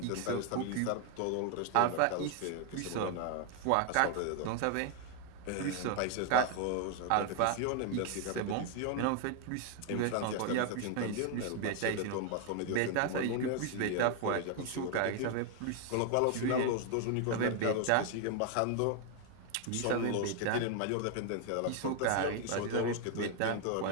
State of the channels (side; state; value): both; different; correlation 0.00